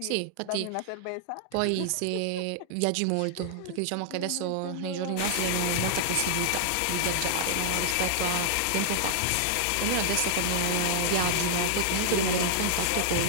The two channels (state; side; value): different; both; correlation -0.01